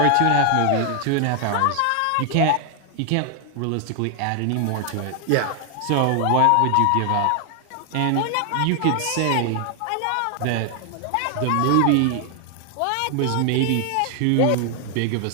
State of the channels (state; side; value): different; both; correlation 0.00